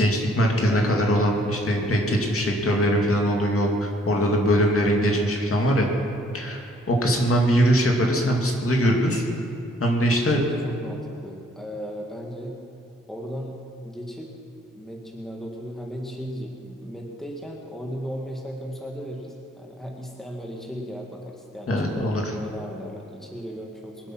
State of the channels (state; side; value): normal; both; correlation 0.64